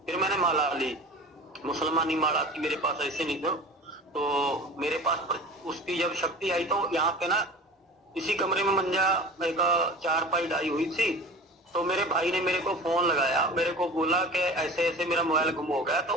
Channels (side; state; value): both; normal; correlation 0.37